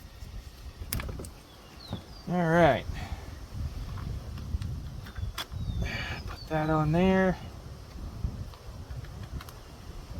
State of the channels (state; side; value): identical; both; correlation 1.00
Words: All right. Put that on there.